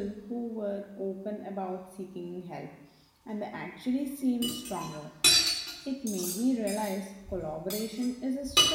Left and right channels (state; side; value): identical; both; correlation 1.00